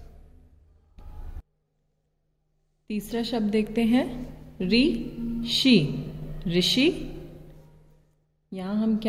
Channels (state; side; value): identical; both; correlation 1.00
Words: तीसरा शब्द देखते हैं ऋ षि, ऋषि। यहाँ हम